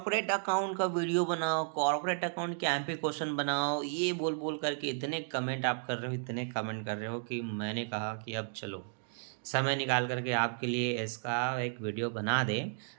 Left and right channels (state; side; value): silent; left; digital silence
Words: अकाउंट का वीडियो बनाओ, कॉर्पोरेट अकाउंट के एमपी क्वेश्चन बनाओ, ये बोल बोल करके इतने कमेंट आप कर रहे हो, इतने कमेंट कर रहे हो कि मैंने कहा कि अब चलो समय निकाल करके आपके लिए इसका एक वीडियो बना दें